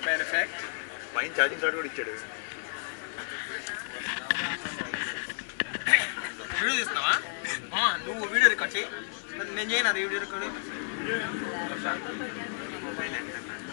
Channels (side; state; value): right; silent; digital silence